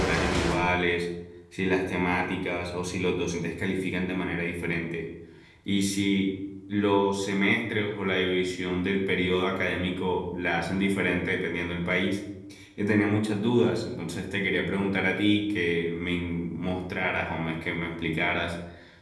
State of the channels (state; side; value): identical; both; correlation 1.00